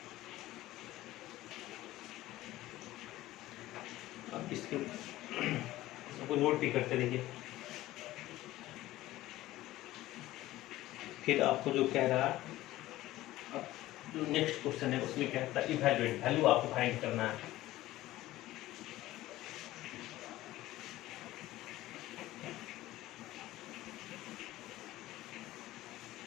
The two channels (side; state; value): right; quieter; 16.2 dB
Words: अब इसके सबको नोट भी करते रहिए। फिर आपको जो कह रहा है, अब जो नेक्स्ट क्वेश्चन है उसमें क्या कहता है इवैल्यूएट, वैल्यू आपको फाइंड करना है।